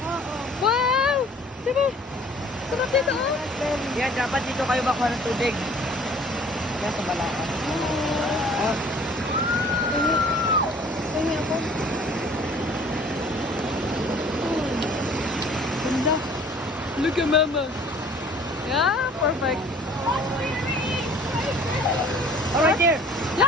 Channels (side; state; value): both; normal; correlation 0.52